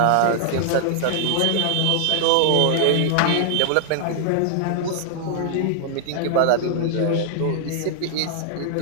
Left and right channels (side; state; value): both; different; correlation -0.01